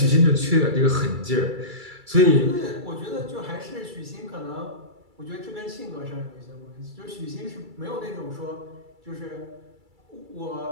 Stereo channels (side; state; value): left; late; 2.3 ms